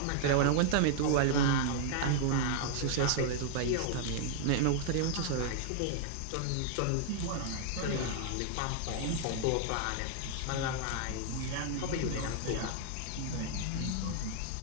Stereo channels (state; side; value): different; both; correlation 0.00